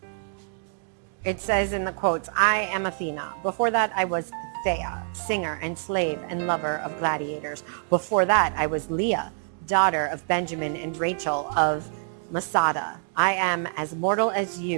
It says in the quotes, I am Athena. Before that, I was Thea, singer and slave and lover of gladiators. Before that, I was Leah, daughter of Benjamin and Rachel of Masada. I am as mortal as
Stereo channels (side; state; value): left; silent; digital silence